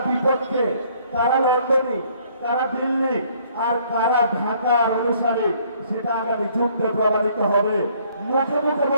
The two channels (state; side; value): inverted; both; correlation -0.62